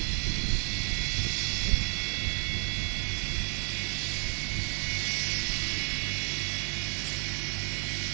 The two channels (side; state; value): left; quieter; 39.4 dB